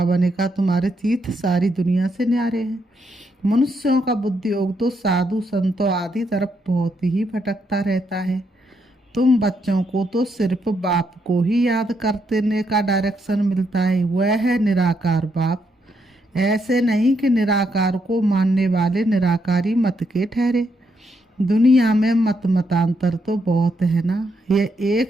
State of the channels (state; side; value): normal; both; correlation 0.78